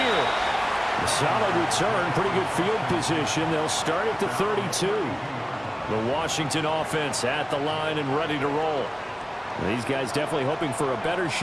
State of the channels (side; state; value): both; identical; correlation 1.00